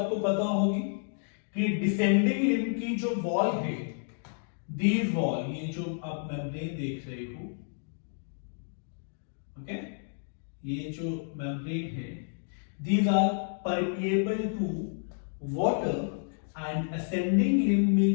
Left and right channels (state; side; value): silent; right; digital silence